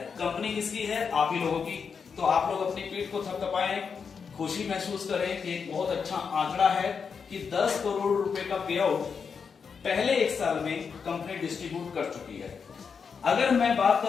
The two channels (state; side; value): quieter; right; 6.0 dB